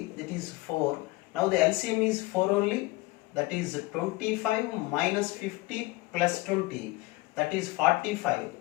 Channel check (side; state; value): right; quieter; 21.7 dB